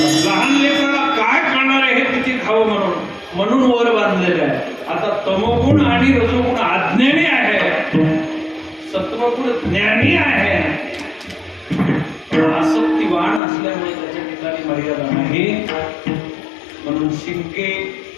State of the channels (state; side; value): drops out; right; at 13.4 s